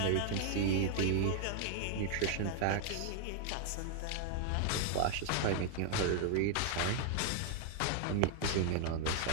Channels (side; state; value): both; different; correlation 0.00